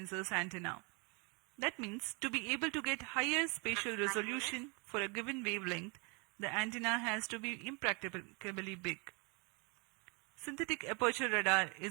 antenna. That means to be able to get higher spatial resolution for a given wavelength, the antenna has to be impracticably big. Synthetic aperture radar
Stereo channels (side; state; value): left; quieter; 31.9 dB